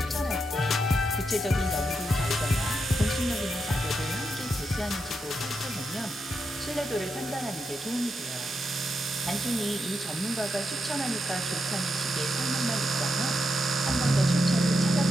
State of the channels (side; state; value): both; normal; correlation 0.84